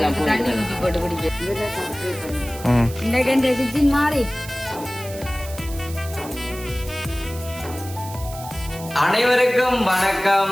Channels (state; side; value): noise; right; hiss, 15 dB below the sound